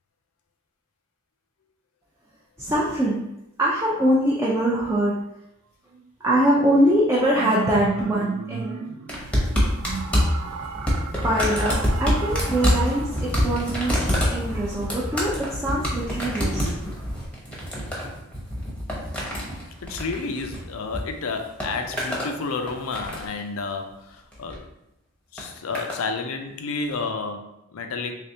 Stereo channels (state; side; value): normal; both; correlation 0.60